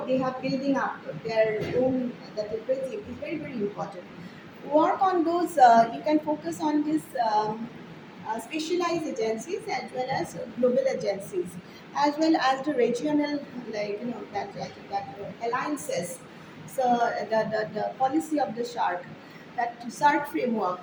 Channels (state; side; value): identical; both; correlation 1.00